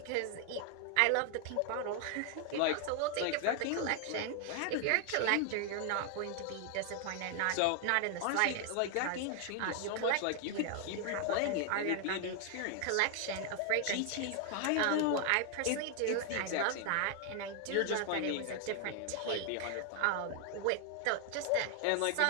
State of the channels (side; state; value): both; different; correlation 0.00